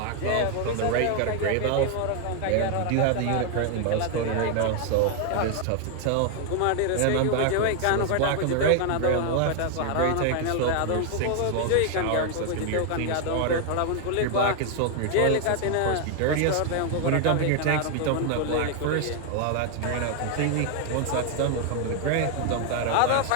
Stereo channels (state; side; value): different; both; correlation 0.00